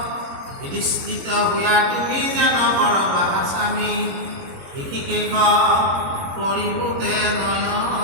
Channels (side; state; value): left; late; 22 ms